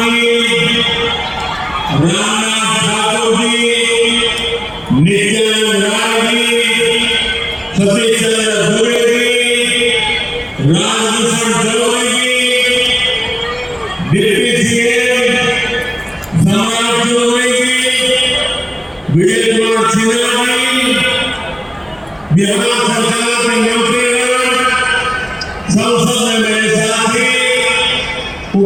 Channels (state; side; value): identical; both; correlation 1.00